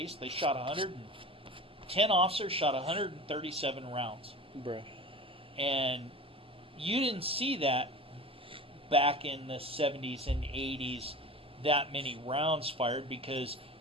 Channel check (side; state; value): both; normal; correlation 0.35